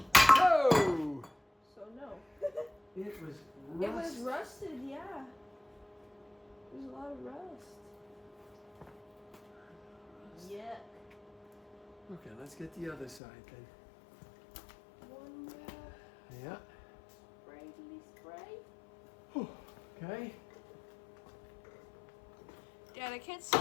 Oh! So no. It was It was rusted, yeah. There's a lot of rust. Yeah. Okay, let's get the other side then. One more. Yeah. Spray. Okay. Dad, I can't see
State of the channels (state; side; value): drops out; right; at 13.2 s